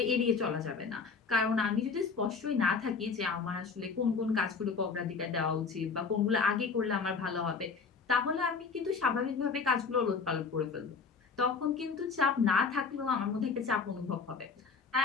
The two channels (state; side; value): quieter; right; 5.2 dB